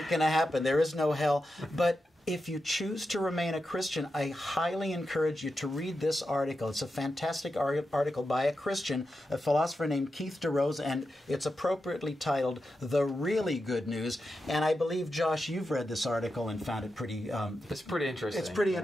going to happen. There is no hell. But if you choose to remain a Christian, I highly encourage you to read this article. It's a fantastic article by a Christian, a philosopher named Keith DeRose, and it's appropriately titled The Really Good News. And I believe, Josh, you've read this article and found it pretty... it's pretty interesting. It's pretty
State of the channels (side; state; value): both; normal; correlation 0.89